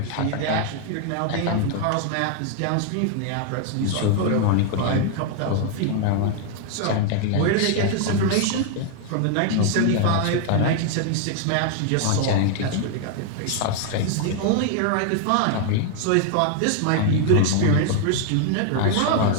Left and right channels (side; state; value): both; different; correlation 0.00